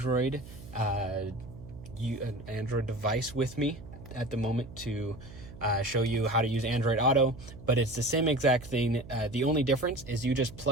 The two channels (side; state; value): right; noise; hum, 16 dB below the sound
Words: device with me at the moment to show you how to use Android Auto, but it's the same exact thing. The only difference is you just